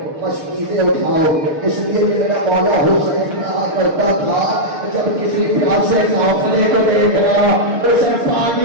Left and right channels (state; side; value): late; left; 6.6 ms